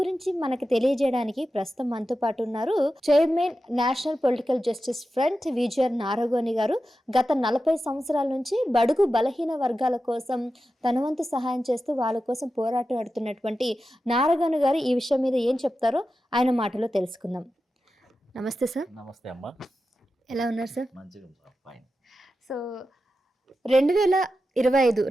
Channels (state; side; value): normal; both; correlation 0.91